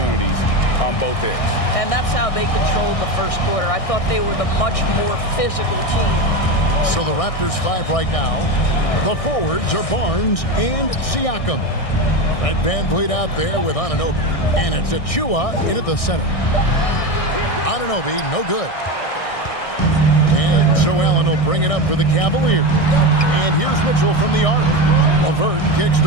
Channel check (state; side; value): late; right; 1.6 ms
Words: on both ends. And that's how they controlled the first quarter. I thought they were the much more physical team. So the Raptors 5 right now. The forwards are Barnes and Siakam. Fred Van Vliet out there with Anunoby. And it's Achua in at the center. Anunoby, no good. And so Allen will bring it up for the Cavaliers. And here's Mitchell from the arc. LeVert kicks